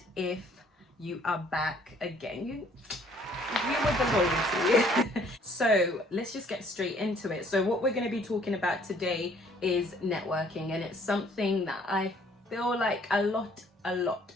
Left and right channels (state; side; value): normal; both; correlation 0.60